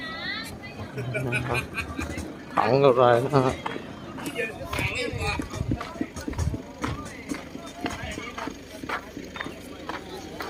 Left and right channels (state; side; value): identical; both; correlation 1.00